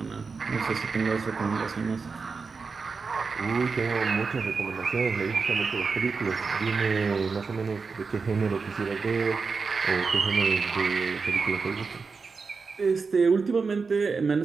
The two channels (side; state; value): left; quieter; 4.8 dB